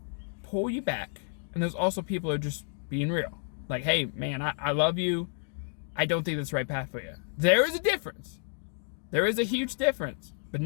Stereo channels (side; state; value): right; silent; 57 dB below the other